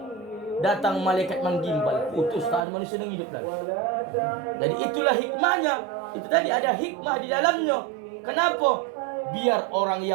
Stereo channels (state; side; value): drops out; left; at 2.7 s